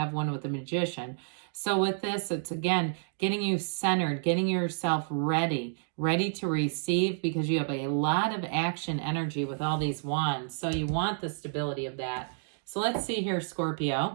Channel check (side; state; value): left; silent; digital silence